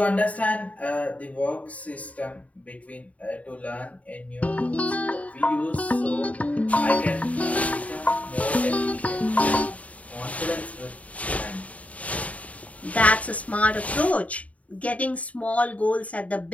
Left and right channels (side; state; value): right; late; 0.068 ms